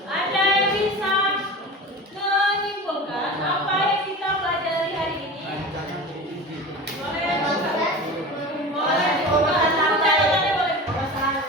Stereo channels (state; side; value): normal; both; correlation 0.32